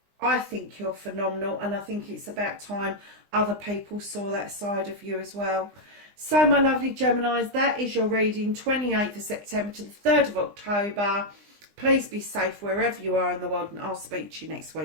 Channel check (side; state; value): left; late; 20 ms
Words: I think you're phenomenal, and I think it's about time other people saw that side of you as well. So my lovely Geminis, that is your reading, 28th of September to the 3rd of October. Please be safe wherever you are in the world, and I'll speak to you next